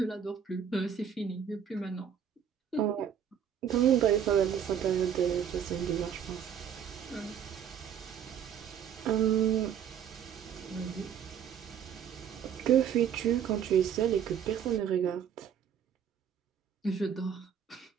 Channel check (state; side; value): quieter; left; 8.4 dB